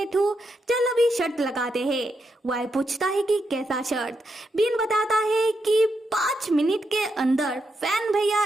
हूँ, चल अभी शर्त लगाते हैं। वाई पूछता है कि कैसा शर्त? बीन बताता है कि 5 मिनट के अंदर फैन भैया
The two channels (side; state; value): both; normal; correlation 0.82